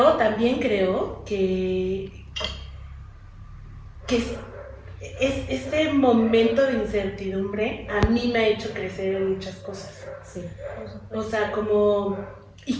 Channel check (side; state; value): both; identical; correlation 1.00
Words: también creo que ese momento de incertidumbre a mí me ha hecho crecer en muchas cosas. Sí. O sea, como